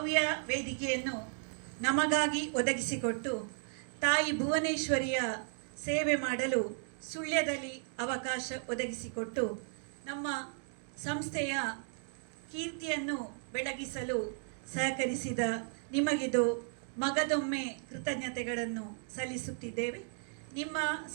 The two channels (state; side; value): silent; left; 54 dB below the other